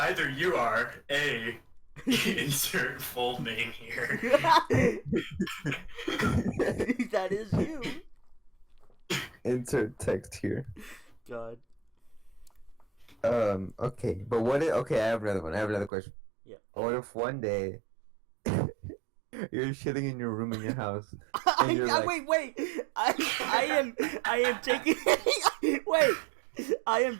you are A, insert full name here. That is you. Insert text here. God. Okay, but what if, okay, I have another one. I have another question. Yeah. What if one day you're shitting in your room in your house and you're like, wait. I am taking wait. I am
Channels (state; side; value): drops out; left; at 15.9 s